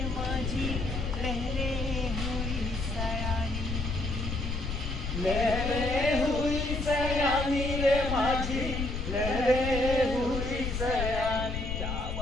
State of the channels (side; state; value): left; noise; rumble, 3 dB below the sound